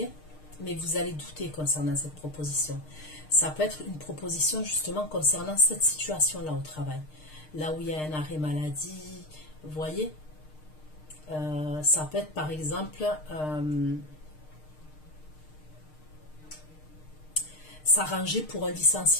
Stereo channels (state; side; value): late; right; 6.5 ms